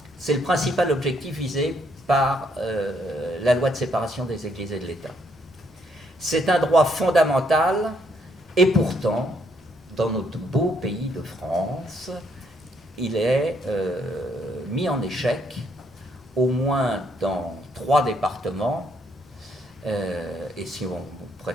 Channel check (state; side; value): normal; both; correlation 0.72